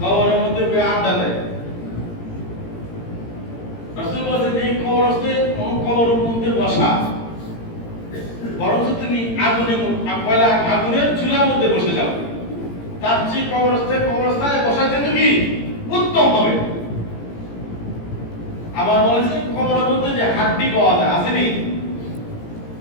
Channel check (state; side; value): late; right; 17 ms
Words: কবরের মধ্যে বয়ে আড্ডা দেয়। রাসূল বলেছেন এই কবরস্থে কবরের মধ্যে বসা বরং তুমি আগুনের চুলার মধ্যে বসে যাও, তার চেয়ে কবরস্থানে বসা যেত কি উত্তম হবে। আবার বলেছে কবরের মধ্যে যে হাড্ডি পাওয়া যায়, আসেনি